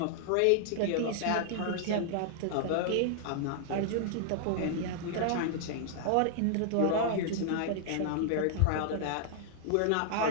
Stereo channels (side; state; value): both; different; correlation -0.01